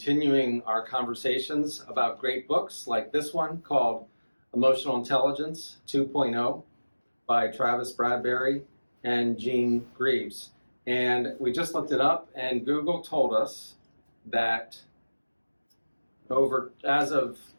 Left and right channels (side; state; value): both; inverted; correlation -1.00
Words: our conversations about great books like this one called Emotional Intelligence 2.0 by Travis Bradberry and Gene Greaves. And we just looked it up, and Google told us that as of